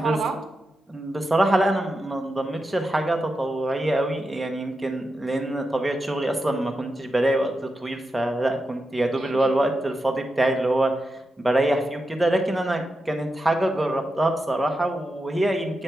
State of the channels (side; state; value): both; normal; correlation 0.88